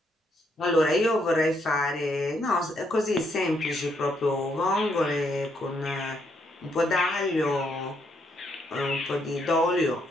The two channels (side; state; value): both; normal; correlation 0.75